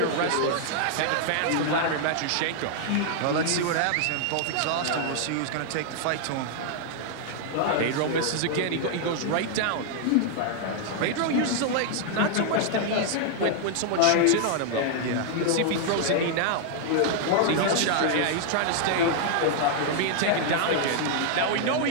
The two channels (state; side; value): different; both; correlation -0.01